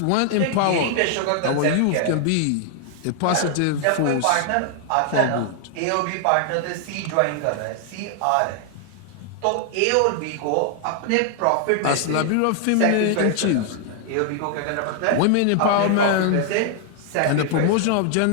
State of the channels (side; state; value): both; different; correlation 0.00